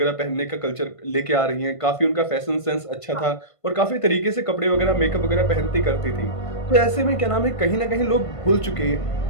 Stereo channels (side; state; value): right; late; 1.5 ms